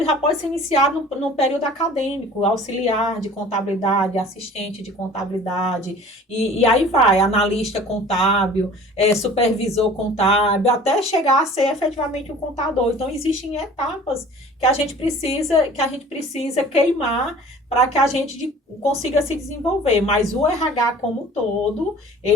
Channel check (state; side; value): normal; both; correlation 0.46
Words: já pode ser iniciado no período acadêmico, auxiliar de contabilidade, assistente de contabilidade, e aí vai, analista contábil, supervisor contábil, até chegar a ser efetivamente um contador. Então, existem etapas que a gente precisa queimar para que a gente consiga se desenvolver. Mas o RH como um todo,